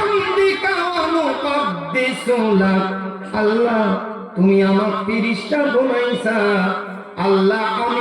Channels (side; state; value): both; identical; correlation 1.00